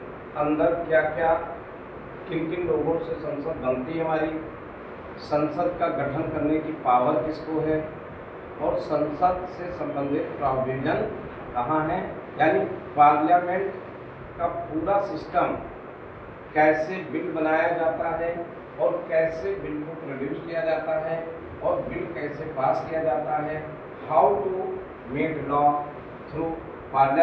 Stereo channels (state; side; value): identical; both; correlation 1.00